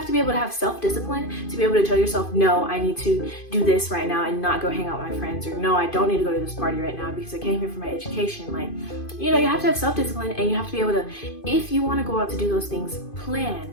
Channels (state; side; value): late; right; 2.5 ms